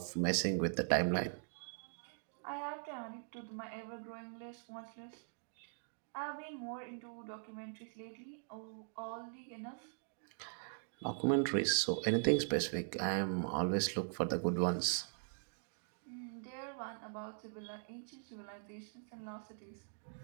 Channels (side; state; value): left; silent; digital silence